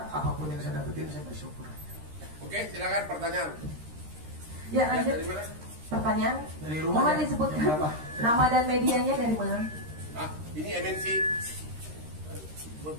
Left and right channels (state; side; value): late; left; 13 ms